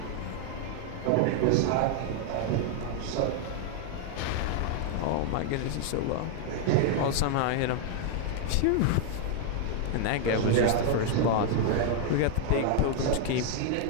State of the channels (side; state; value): both; different; correlation 0.00